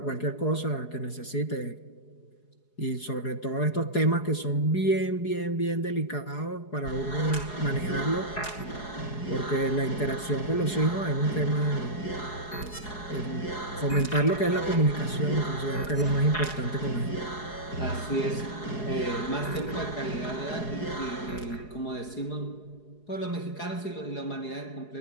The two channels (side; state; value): right; late; 4.8 ms